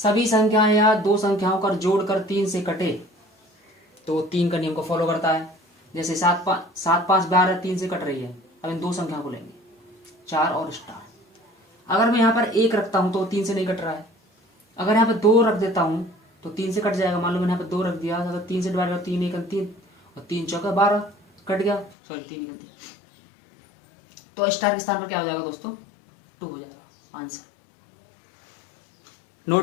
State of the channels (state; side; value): drops out; right; at 22.0 s